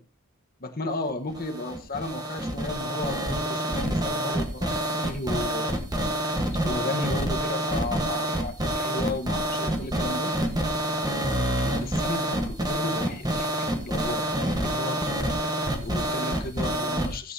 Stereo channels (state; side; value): normal; both; correlation 0.49